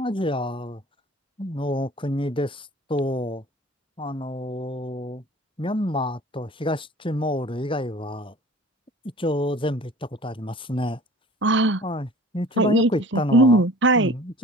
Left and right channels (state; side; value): normal; both; correlation 0.45